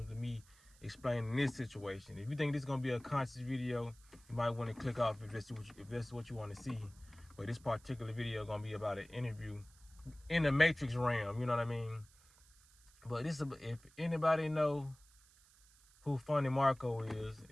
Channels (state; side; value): noise; right; hiss, 27 dB below the sound